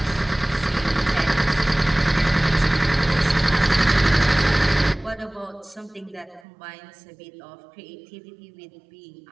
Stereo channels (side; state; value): left; drops out; at 6.5 s